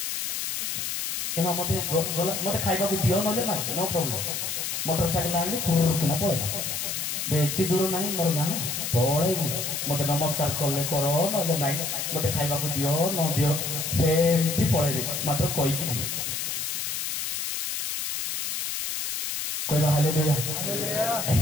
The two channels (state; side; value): noise; left; hiss, 2 dB below the sound